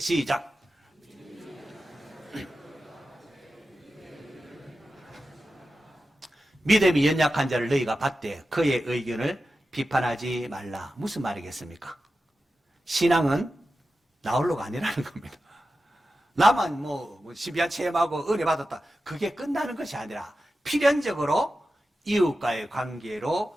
믿음이 연약한 자를 너희가 받되 그의 의견을 비판하지 말라. 무슨 말이겠습니까? 신앙은 나홀로가 아니라는 겁니다. 나만 신비한 체험하고 은혜 받았다, 그게 끝나는 것이 아니라 필연적으로 이웃과의 관계로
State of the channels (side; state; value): both; normal; correlation 0.92